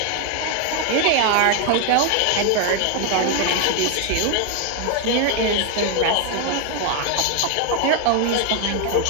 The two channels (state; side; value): different; both; correlation 0.01